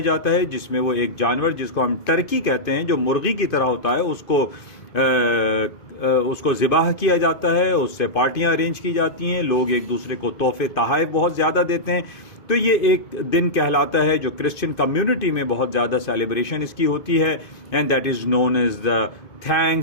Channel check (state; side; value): late; right; 2.5 ms